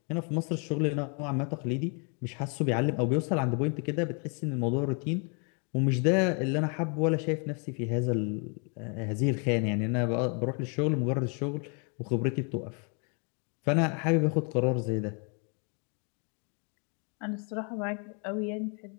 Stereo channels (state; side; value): quieter; right; 38.4 dB